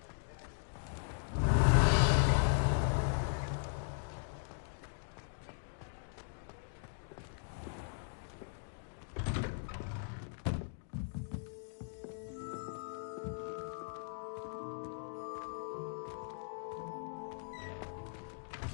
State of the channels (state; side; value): silent; right; digital silence